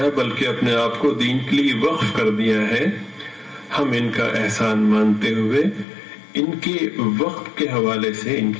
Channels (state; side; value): drops out; right; at 5.9 s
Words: بلکہ اپنے آپ کو دین کے لیے وقف کر دیا ہے، ہم ان کا احسان مانتے ہوئے ان کے وقت کے حوالے سے ان